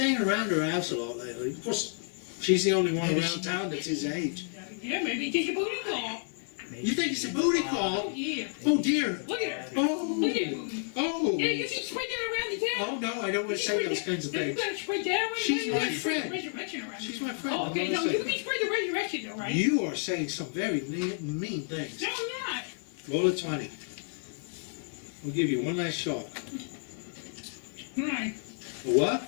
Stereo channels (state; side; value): silent; right; 57 dB below the other